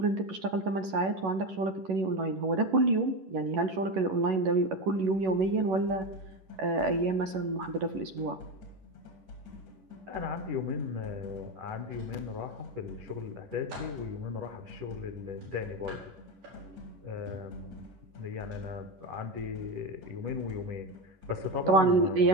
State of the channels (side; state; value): left; late; 11 ms